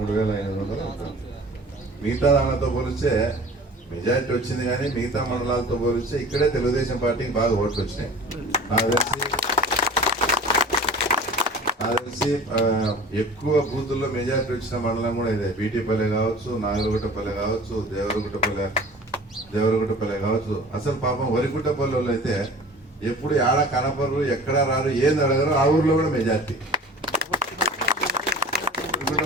ఉంటుంది. మిగతా దానితో పోలిస్తే మెజార్టీ వచ్చింది, కానీ మిగతా మండలాలతో పోలిస్తే ఇక్కడే తెలుగుదేశం పార్టీకి బాగా ఓట్లు వచ్చినాయి. నాకు తెలిసి ఎక్కువ బూతుల్లో మెజార్టీ వచ్చిన మండలం కూడా ఇదే. బీటీపల్లె కావచ్చు, నాగలగుట్టపల్లె కావచ్చు, దేవరగుట్టపల్లె కావచ్చు. అసలు పాపం వరిగుట్టపల్లె వాళ్ళు అయితే ఎప్పుడు ఆడ కనపరు, ఎక్కడ రారు, ఏంది అడగరు. ఆ ఊర్లో కూడా మెజార్టీ.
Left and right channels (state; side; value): normal; both; correlation 0.42